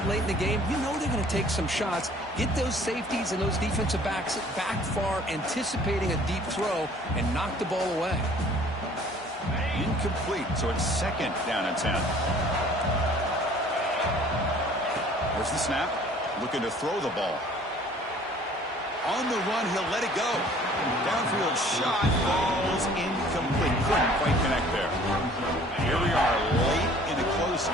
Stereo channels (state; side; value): normal; both; correlation 0.53